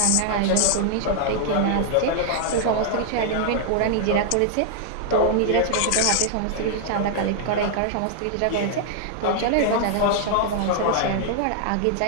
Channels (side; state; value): both; different; correlation -0.01